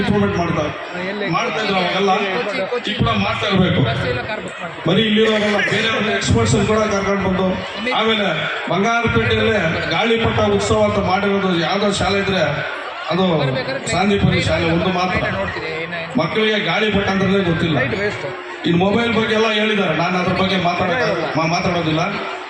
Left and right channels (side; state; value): both; identical; correlation 1.00